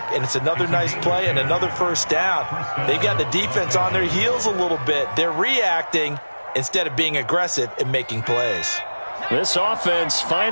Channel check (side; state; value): both; inverted; correlation -1.00